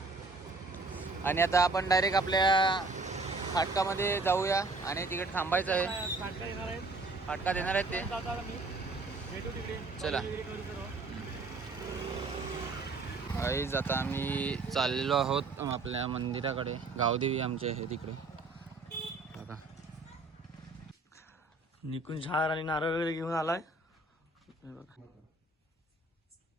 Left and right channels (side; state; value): left; quieter; 3.5 dB